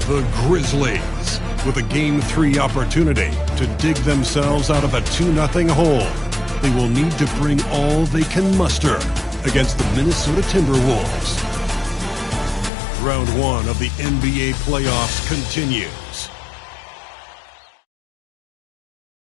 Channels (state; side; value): drops out; right; at 12.7 s